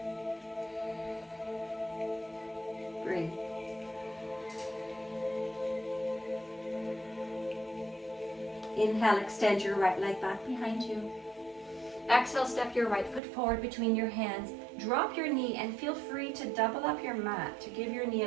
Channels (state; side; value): drops out; left; at 13.2 s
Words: Breathe. Inhale, extend your right leg back behind you. Exhale, step your right foot forward between your hands. Drop your knee and feel free to double up your mat to give your knee